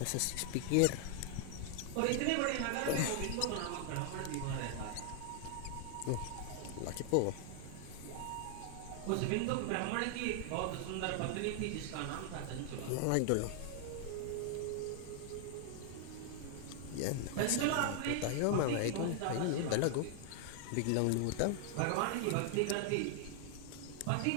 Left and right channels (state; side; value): different; both; correlation 0.00